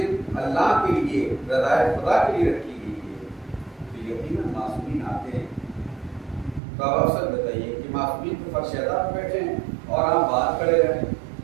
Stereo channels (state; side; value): drops out; left; at 6.6 s